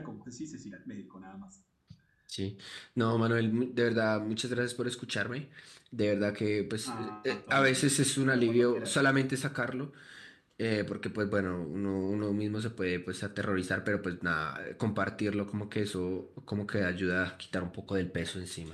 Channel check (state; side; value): identical; both; correlation 1.00